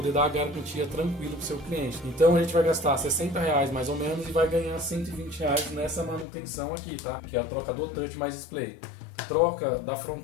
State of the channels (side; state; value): right; drops out; at 6.2 s